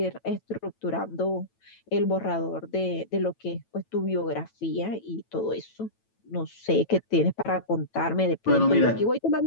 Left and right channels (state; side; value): late; right; 9.1 ms